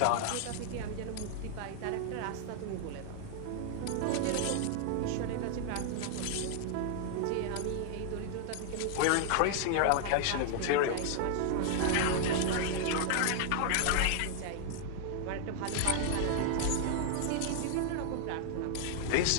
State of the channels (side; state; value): both; different; correlation 0.00